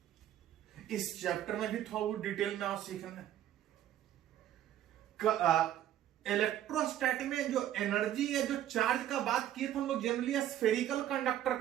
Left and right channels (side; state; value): left; quieter; 11.9 dB